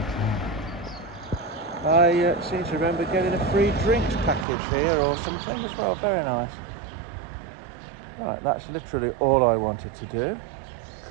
I seem to remember getting a free drinks package here or something as well. Very nice. Right, that's literally all I wanted to do.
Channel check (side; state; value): left; drops out; at 4.5 s